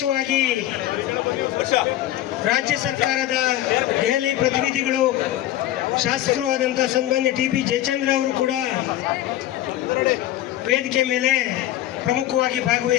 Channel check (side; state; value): right; quieter; 13.8 dB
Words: ರಾಜ್ಯ ಸರ್ಕಾರದ ದೆಹಲಿ ಪ್ರತಿನಿಧಿಗಳು, ಶಾಸಕರು ಆದಂಥ ಸನ್ಮಾನ್ಯ TP ಜಯಚಂದ್ರ ಅವರು ಕೂಡ ವೇದಿಕೆ ಮೇಲೆ ಪ್ರಮುಖವಾಗಿ